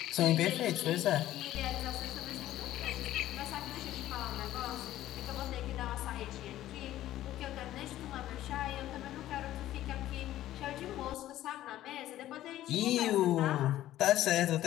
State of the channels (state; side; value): quieter; right; 13.8 dB